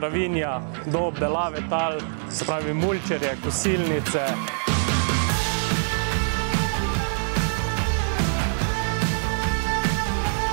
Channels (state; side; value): silent; left; 62 dB below the other